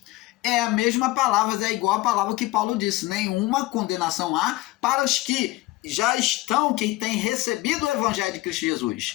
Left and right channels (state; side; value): quieter; right; 18.8 dB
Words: é a mesma palavra, é igual a palavra que Paulo disse, nenhuma condenação há para os que já estão, que têm recebido o Evangelho de Cristo